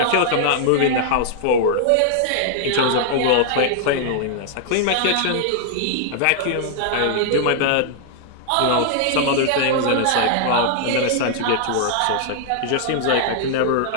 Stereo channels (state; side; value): different; both; correlation -0.01